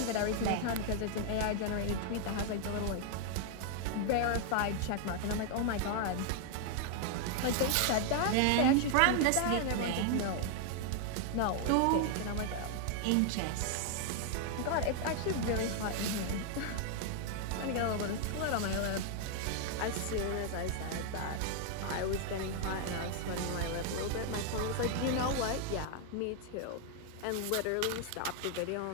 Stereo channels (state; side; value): different; both; correlation 0.00